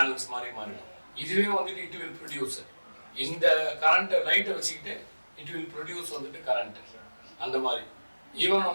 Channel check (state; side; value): inverted; both; correlation -1.00